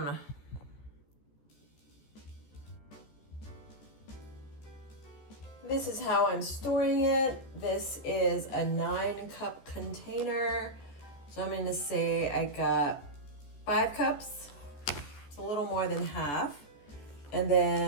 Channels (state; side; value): late; right; 14 ms